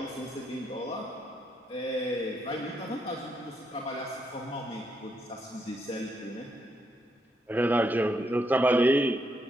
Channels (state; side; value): normal; both; correlation 0.78